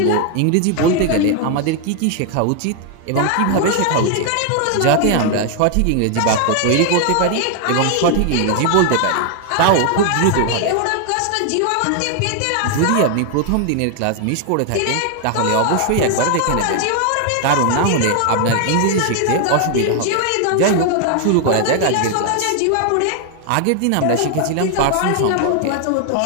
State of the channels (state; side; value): different; both; correlation 0.00